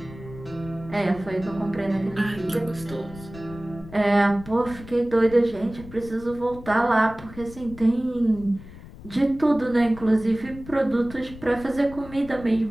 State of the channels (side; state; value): left; noise; rumble, 16 dB below the sound